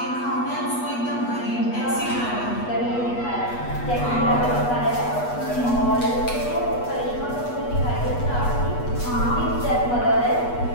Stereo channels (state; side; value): late; right; 8.2 ms